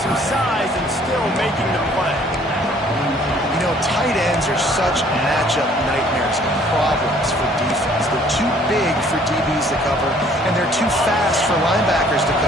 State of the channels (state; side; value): normal; both; correlation 0.58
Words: some size and still making the play. You know, tight ends are such matchup nightmares and problems for defense. They're too big for DBs to cover, and they're too fast for linebackers to